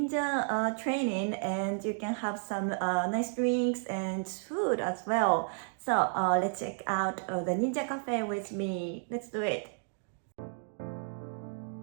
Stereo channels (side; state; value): left; silent; digital silence